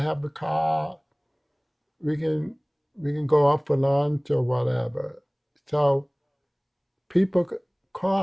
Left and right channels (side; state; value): both; identical; correlation 1.00